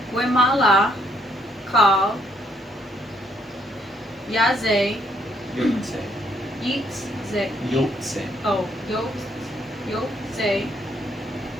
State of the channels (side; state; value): both; normal; correlation 0.70